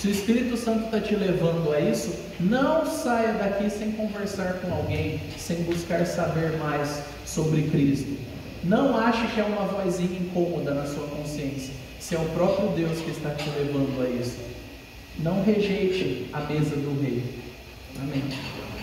o Espírito Santo está te levando a isso, não saia daqui sem conversar com alguém, sem buscar saber mais sobre Cristo. Não ache que é uma vozinha incômoda na sua consciência. Se é o próprio Deus que está te levando a isso. Não rejeite a mesa do rei. Amém.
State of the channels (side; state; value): both; identical; correlation 1.00